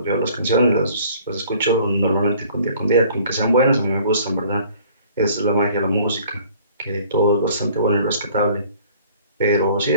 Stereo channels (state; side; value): inverted; both; correlation -0.54